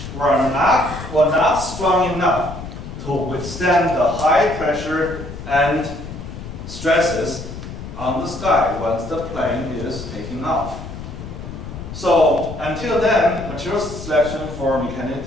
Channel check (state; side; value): noise; left; rumble, 10 dB below the sound